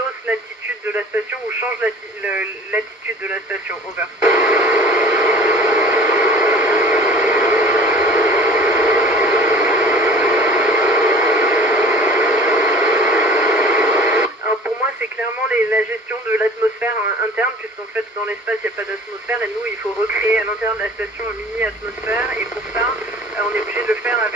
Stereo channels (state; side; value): normal; both; correlation 0.45